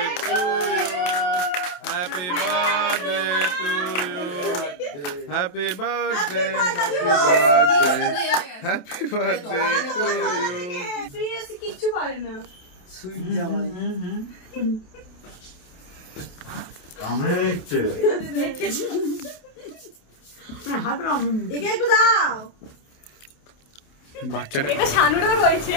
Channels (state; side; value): late; right; 28 ms